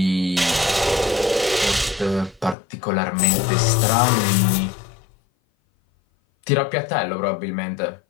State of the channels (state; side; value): drops out; right; at 2.6 s